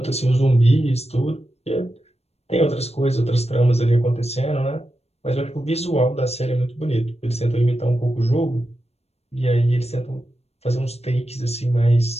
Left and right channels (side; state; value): right; late; 0.30 ms